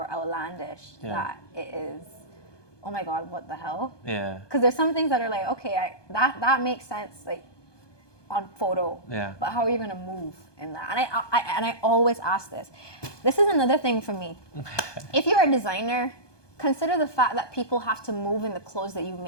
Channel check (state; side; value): late; right; 1.2 ms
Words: outlandish that it is, oh my God, what the hell? Yeah. Because there's some things that are like, okay, that makes sense, like, on photo. Yeah. But how are you gonna move in that? And I always ask this. This is another thing for me. If you're a designer, consider the fact that people have to move in the clothes that you